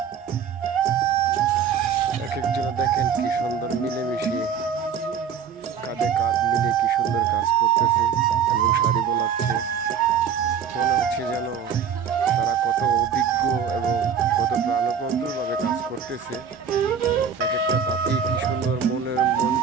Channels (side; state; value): left; quieter; 7.3 dB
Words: এক একজন দেখেন কি সুন্দর মিলেমিশে কাঁধে কাঁধ মিলে কি সুন্দর কাজ করতেছে এবং শাড়ি বোনাচ্ছে। মনে হচ্ছে যেন তারা কত অভিজ্ঞ এবং কত প্রাণবন্তরভাবে কাজ করতেছে। এক একটা তাঁতি কি সুন্দর মনের